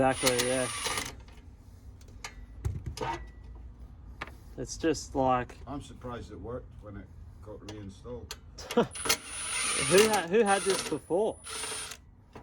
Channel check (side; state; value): both; identical; correlation 1.00